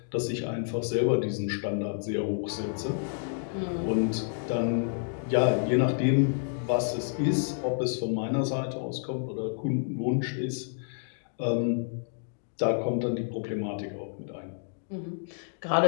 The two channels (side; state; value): right; silent; digital silence